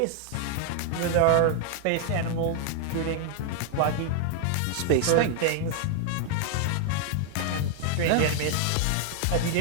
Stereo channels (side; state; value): both; different; correlation 0.00